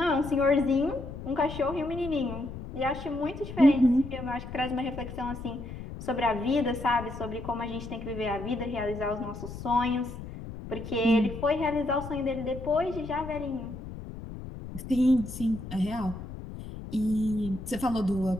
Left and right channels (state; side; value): noise; left; rumble, 10 dB below the sound